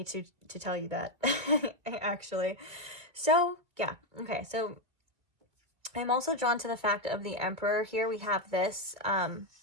to tell you that, actually. So, yeah. Okay, so I'm also drawn to the fact of the Emperor here. We have this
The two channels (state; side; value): late; left; 2.4 ms